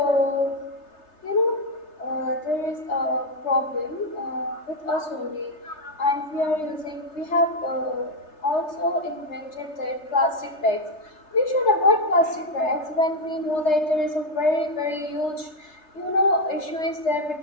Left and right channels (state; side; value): late; right; 3.3 ms